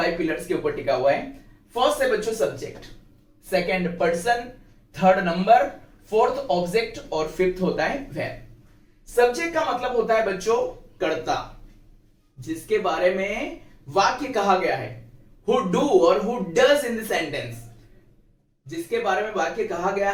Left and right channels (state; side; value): identical; both; correlation 1.00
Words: पिलर्स के ऊपर टिका हुआ है। फर्स्ट है बच्चों subject, second person, third number, fourth object और फिफ्थ होता है वर्ब। सब्जेक्ट का मतलब होता है बच्चों कर्ता, जिसके बारे में वाक्य कहा गया है, हु डू और who does in the sentence. जिसके बारे में वाक्य कहा गया